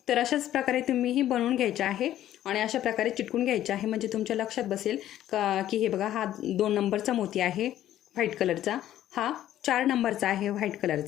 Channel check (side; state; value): right; quieter; 12.5 dB